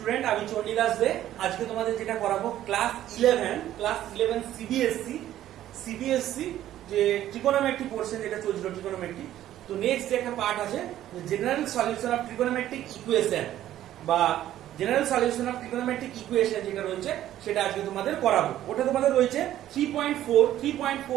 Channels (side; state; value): left; quieter; 12.7 dB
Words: স্টুডেন্ট, আমি চণ্ডীদাস দে। আজকে তোমাদের যেটা করাবো ক্লাস 11 সিবিএসসি যে ট্রিগোনোমেট্রিক পোরশন যেটা চলছিল ট্রিগোনোমেট্রিক। তো নেক্সট যে একটা পার্ট আছে general solution of trigonometric equation বা general solution of trigonometric equation যেটা রয়েছে সেটা আজকে তোমাদের করাবো। ওটা তোমাদের রয়েছে